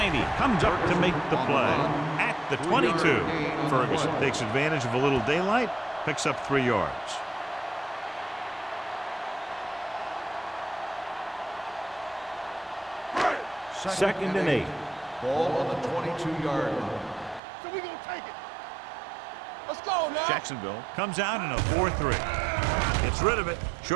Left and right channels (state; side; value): drops out; left; at 17.4 s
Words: comes up to make the play at the 22. Ferguson takes advantage of a little daylight, picks up 3 yards. Second and 8. Ball on the 22-yard line. So we gonna take it. Let's go now. Jacksonville comes out in a 4-3. Gets rid of it.